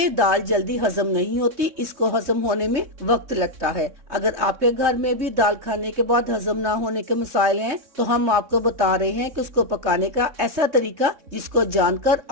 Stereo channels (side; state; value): left; late; 3.3 ms